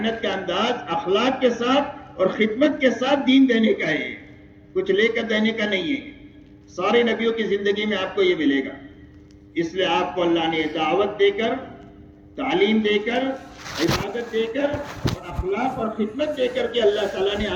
کا انداز اخلاق کے ساتھ اور خدمت کے ساتھ دین دینے کا ہے، کچھ لے کر دینے کا نہیں ہے. سارے نبیوں کی زندگی میں آپ کو یہ ملے گا. اس لیے آپ کو اللہ نے دعوت دے کر، تعلیم دے کر، عبادت دے کر اور اخلاق اور خدمت دے کر کے اللہ تعالیٰ نے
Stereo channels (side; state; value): both; identical; correlation 1.00